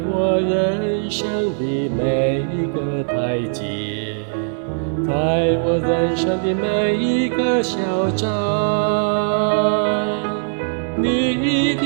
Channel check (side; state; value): left; silent; 66 dB below the other